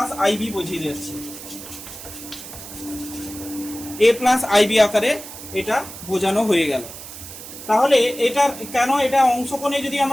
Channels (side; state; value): right; noise; hiss, 13 dB below the sound